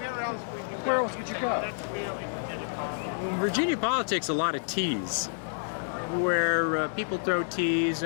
where else would you go? In Virginia politics, a lot of teas, where people throw teas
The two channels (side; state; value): right; silent; digital silence